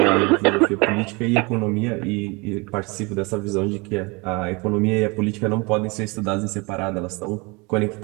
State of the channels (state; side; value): quieter; left; 27.4 dB